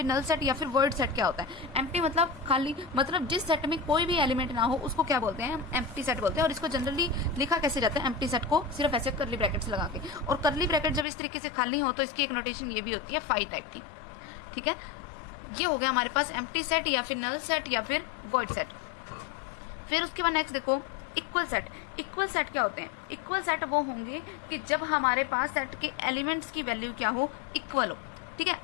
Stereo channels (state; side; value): drops out; right; at 11.1 s